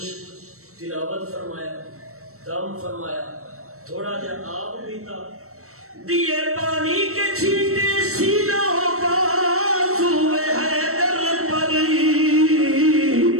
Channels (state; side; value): late; left; 0.63 ms